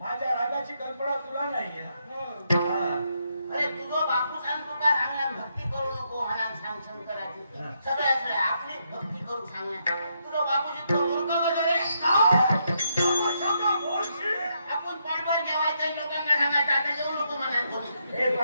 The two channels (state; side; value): inverted; both; correlation -0.78